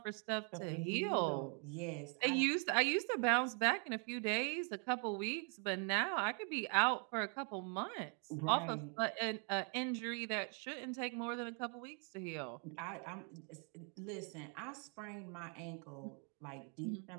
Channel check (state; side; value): quieter; left; 39.4 dB